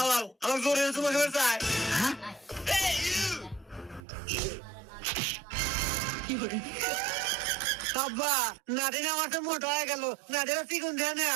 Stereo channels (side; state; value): left; drops out; at 4.0 s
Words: আমার জোরে তোমাকে বের চাই হ্যাঁ আব্বা নাদিন আমার তো মোটা হয়ে গেল নাদিরা চিকন দিয়ে